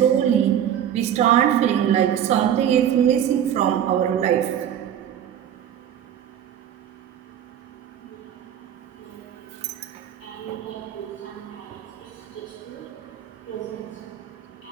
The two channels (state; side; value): quieter; left; 9.9 dB